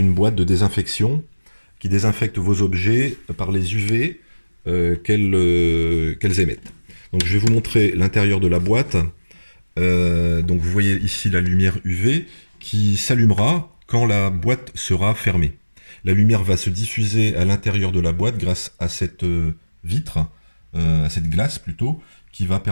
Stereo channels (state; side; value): inverted; both; correlation -1.00